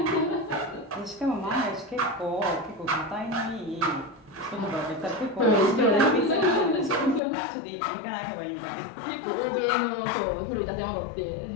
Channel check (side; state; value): right; drops out; at 7.2 s